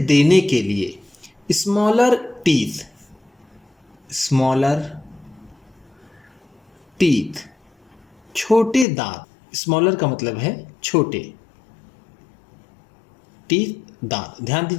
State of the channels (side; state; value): right; drops out; at 8.8 s